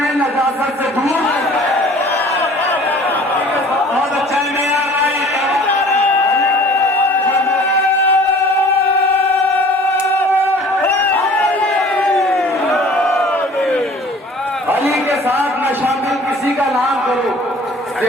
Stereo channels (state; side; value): normal; both; correlation 0.49